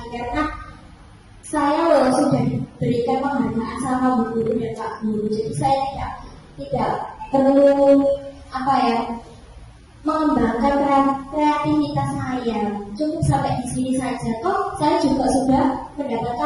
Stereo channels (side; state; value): both; identical; correlation 1.00